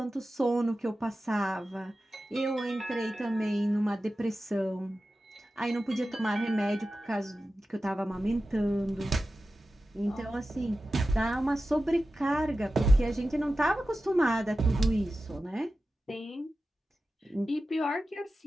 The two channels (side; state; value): both; normal; correlation 0.93